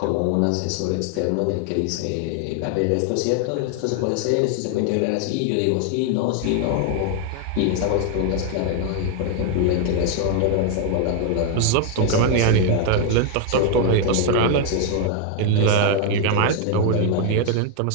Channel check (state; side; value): different; both; correlation 0.00